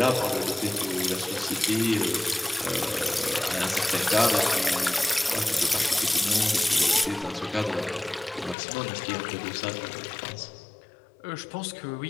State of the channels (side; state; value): right; drops out; at 8.6 s